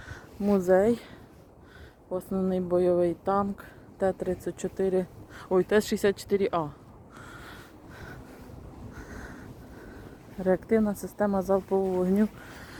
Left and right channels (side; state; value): both; identical; correlation 1.00